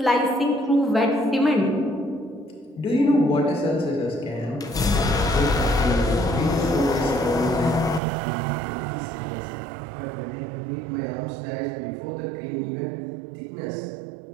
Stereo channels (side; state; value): left; drops out; at 8.0 s